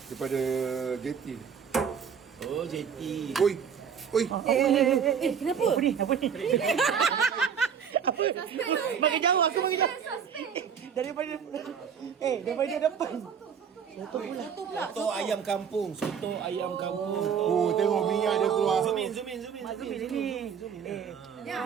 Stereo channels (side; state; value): left; quieter; 7.3 dB